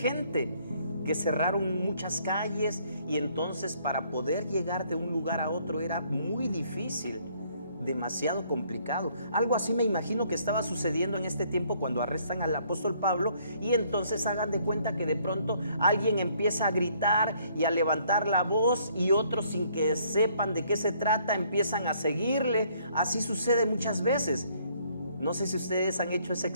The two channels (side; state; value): both; inverted; correlation -0.65